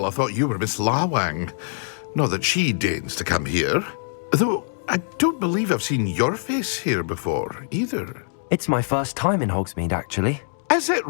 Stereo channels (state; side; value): silent; right; digital silence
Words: I thought you were Miss Lawang. Not that she deigns to come here. Though I don't believe I've seen your face here before, either. It's my first time in Hogsmeade, actually. Is it